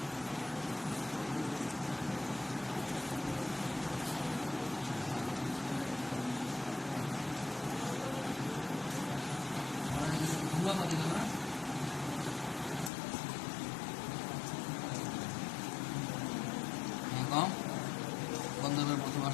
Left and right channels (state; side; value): drops out; right; at 12.9 s